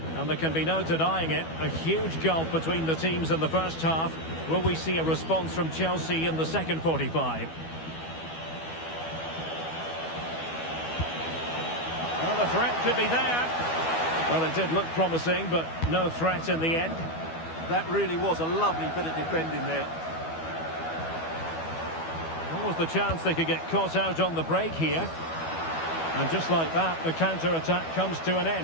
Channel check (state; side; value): late; right; 12 ms